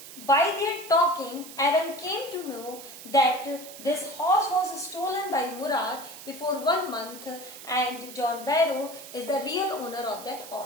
by their talking, Aram came to know that this horse was stolen by Murad before 1 month and John Barrow is the real owner of that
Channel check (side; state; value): right; noise; hiss, 14 dB below the sound